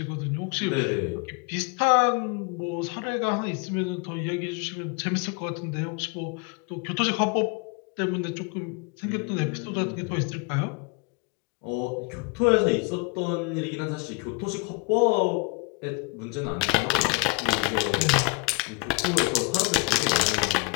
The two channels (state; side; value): quieter; right; 26.3 dB